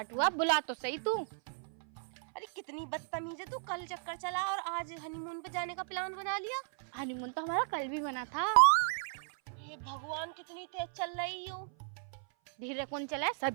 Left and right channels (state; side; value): silent; left; 54 dB below the other